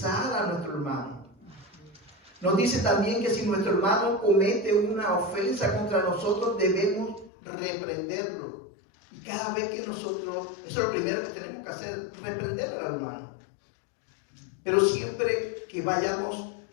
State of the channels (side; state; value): right; drops out; at 7.3 s